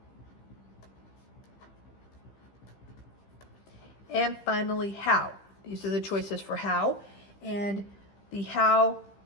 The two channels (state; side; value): late; right; 15 ms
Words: And finally, how. These are the choices for how. And the how